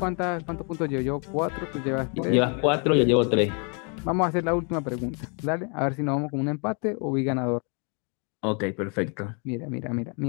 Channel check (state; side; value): quieter; right; 37.3 dB